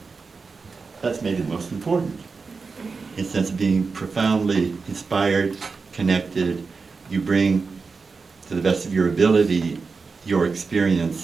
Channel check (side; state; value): left; quieter; 4.6 dB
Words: that's maybe the most important. In the sense of being profoundly inspired, connected, you bring to the best of your ability, your